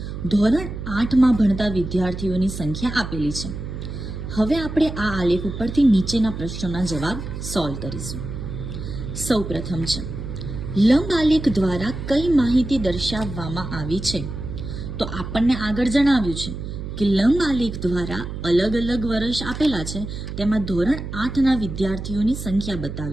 ધોરણ 8માં ભણતા વિદ્યાર્થીઓની સંખ્યા આપેલી છે. હવે આપણે આ આલેખ ઉપરથી નીચેના પ્રશ્નોના જવાબ સોલ્વ કરીશું. સૌ પ્રથમ છે, લંબ આલેખ દ્વારા કઈ માહિતી દર્શાવવામાં આવી છે? તો આપણને આગળ જણાવ્યું છે કે લંબ આલેખ દ્વારા અલગ અલગ વર્ષ આપેલા છે, તેમાં ધોરણ 8ના વિદ્યાર્થીઓની સંખ્યા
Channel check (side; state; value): right; noise; hum, 7 dB below the sound